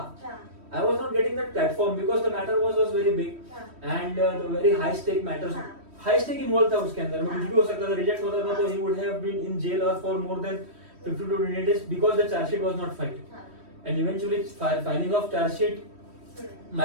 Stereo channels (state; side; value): late; left; 3.1 ms